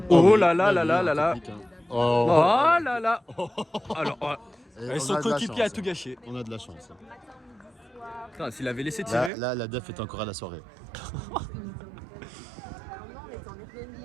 Oh là là là là là là. Oh, Oh là là. Alors, Et son on a de la coéquipier a chance. tout gâché. On a de la chance. Putain, s'il avait laissé tirer... Là, la def est encore à la soirée.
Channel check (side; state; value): left; drops out; at 9.3 s